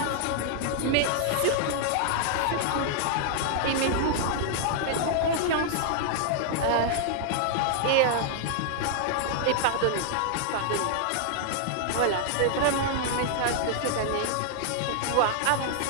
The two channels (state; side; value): different; both; correlation 0.00